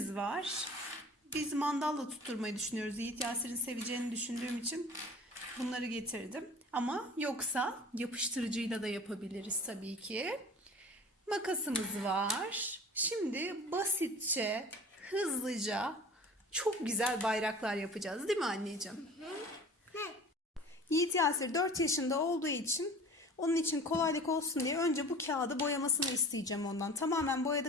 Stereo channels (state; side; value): normal; both; correlation 0.42